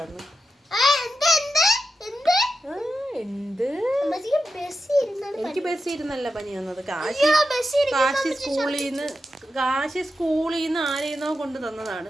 എനിക്ക് ബസ്സിൽ ഇരുന്നല്ല പനി വന്നത്. കാശി സ്കൂളിൽ നിന്ന് ആരെയെന്നോ കൊണ്ട് തന്നതാണ്.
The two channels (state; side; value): normal; both; correlation 0.89